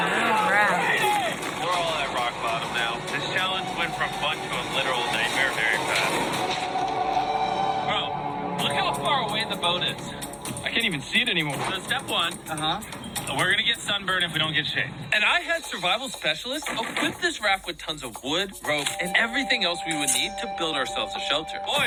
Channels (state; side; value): identical; both; correlation 1.00